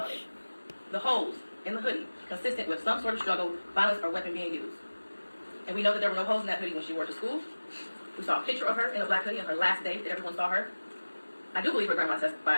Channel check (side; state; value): both; inverted; correlation -1.00